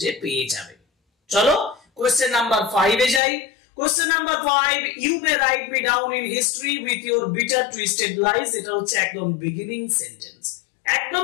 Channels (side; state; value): right; drops out; at 3.2 s